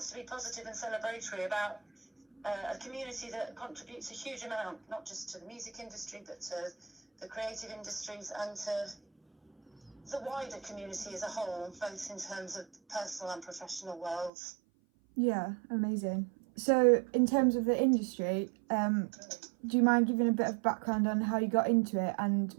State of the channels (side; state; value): left; drops out; at 14.3 s